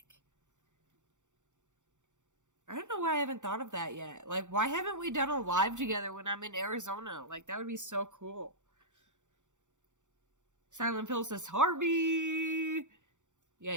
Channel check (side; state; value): left; late; 0.85 ms